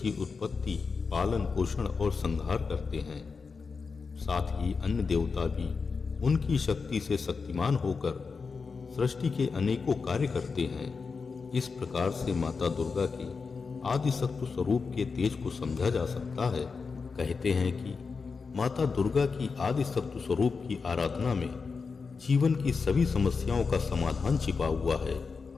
उत्पत्ति, पालन पोषण और संहार करते हैं। साथ ही अन्य देवता भी उनकी शक्ति से शक्तिमान होकर सृष्टि के अनेकों कार्य करते हैं। इस प्रकार से माता दुर्गा के आदि सत्व स्वरूप के तेज को समझा जा सकता है। कहते हैं कि माता दुर्गा की आदि सत्व स्वरूप की आराधना में जीवन की सभी समस्याओं का समाधान छिपा हुआ है।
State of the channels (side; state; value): right; quieter; 4.9 dB